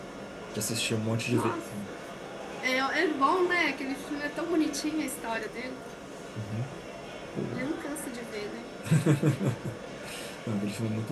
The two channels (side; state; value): both; identical; correlation 1.00